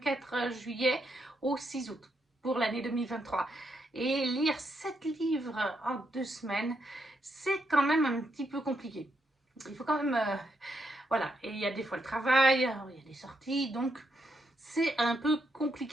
juillet au 6 août, pour l'année 2023. Et lire 7 livres en 2 semaines, c'est quand même un petit peu compliqué. Il faut quand même... voilà, et il y a des fois le travail, il y a des sorties, donc c'est un peu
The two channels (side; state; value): both; normal; correlation 0.79